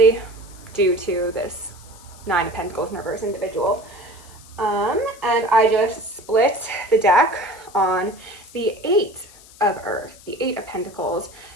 due to this Nine of Pentacles in reverse individual. And I just split the deck on the Eight of Earth, the Eight of Pentacles.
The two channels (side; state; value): left; noise; hiss, 22 dB below the sound